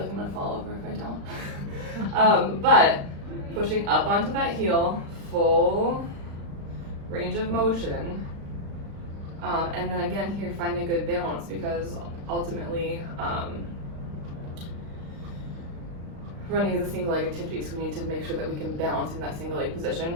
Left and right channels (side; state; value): left; late; 35 ms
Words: I'm gonna fall over if I don't. But pushing up onto that heel, full range of motion. And then again here, finding a good balance, because ultimately running is a single leg activity, so we need to make sure that we can balance in that single leg